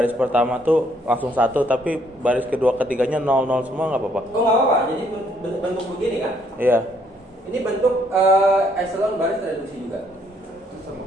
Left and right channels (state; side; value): normal; both; correlation 0.68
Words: pertama tuh langsung 1, tapi baris kedua ketiganya 0 semua nggak apa-apa? Oh nggak apa-apa. Jadi bentuk begini kan? Iya. Ini bentuk echelon baris reduksi juga. Itu